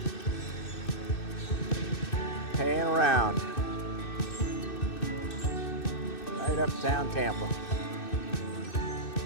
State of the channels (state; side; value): late; right; 2.6 ms